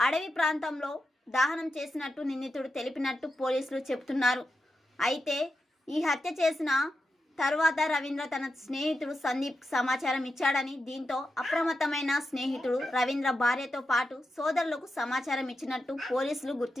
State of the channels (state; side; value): normal; both; correlation 0.88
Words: ప్రాంతంలో దహనం చేసినట్టు నిందితుడు తెలిపినట్టు పోలీసులు చెబుతున్నారు. అయితే ఈ హత్య చేసిన తర్వాత రవీంద్ర తన స్నేహితుడు సందీప్ సమాచారం ఇచ్చాడని, దీంతో అప్రమత్తమైన స్నేహితుడు రవీంద్ర భార్యతో పాటు సోదరులకు సమాచారం ఇచ్చినట్టు పోలీసులు